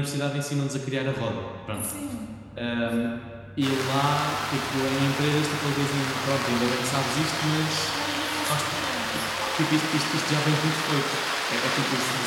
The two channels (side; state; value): both; identical; correlation 1.00